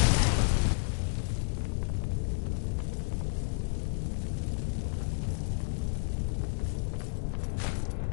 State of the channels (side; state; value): right; silent; digital silence